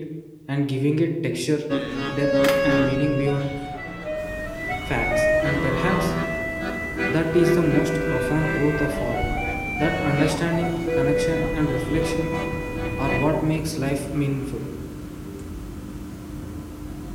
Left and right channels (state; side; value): identical; both; correlation 1.00